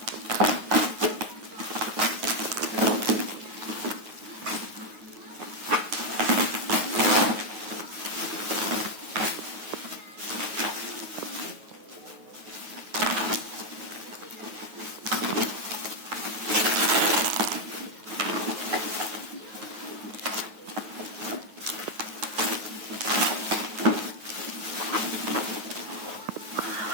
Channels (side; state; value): left; late; 9.4 ms